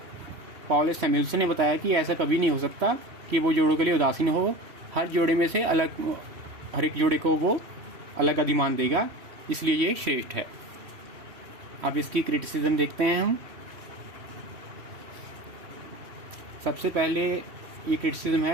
पॉल सैमुअल्सन ने बताया कि ऐसा कभी नहीं हो सकता कि वो जोड़ों के लिए उदासीन हो। हर जोड़े में से अलग, हर एक जोड़े को वो अलग अधिमान देगा, इसलिए ये श्रेष्ठ है। अब इसकी क्रिटिसिज्म देखते हैं हम। सबसे पहले ये क्रिटिसिज्म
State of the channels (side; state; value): left; late; 3.1 ms